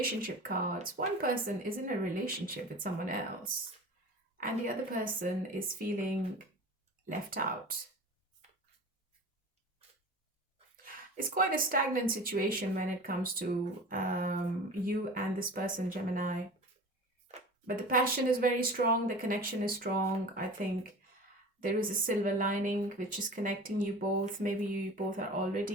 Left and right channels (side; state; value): both; normal; correlation 0.36